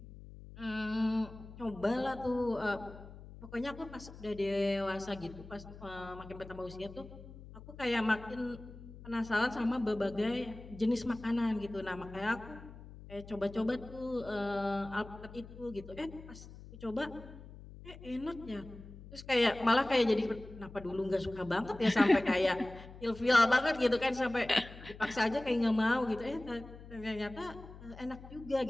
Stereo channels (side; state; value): left; noise; hum, 16 dB below the sound